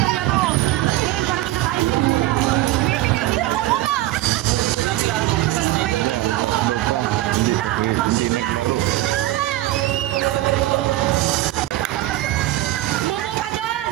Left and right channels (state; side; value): quieter; left; 16.1 dB